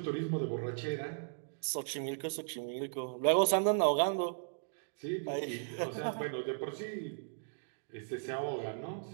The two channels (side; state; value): left; silent; digital silence